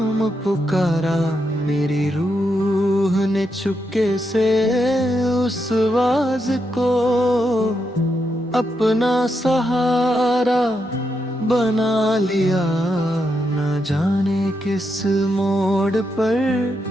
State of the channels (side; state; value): both; normal; correlation 0.82